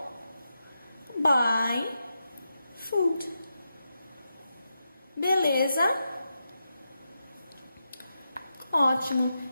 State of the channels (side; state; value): both; inverted; correlation -0.87